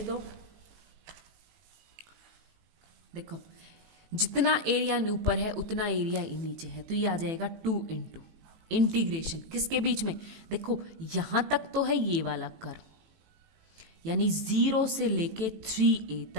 तो देखो जितना एरिया ऊपर है उतना एरिया नीचे है, तो ये आ जाएगा 2 इंटू इंटीग्रेशन किसके बीच में, देखो यहाँ तक तो है ये वाला कर्व, यानी 0 से लेके 3a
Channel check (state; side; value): late; left; 18 ms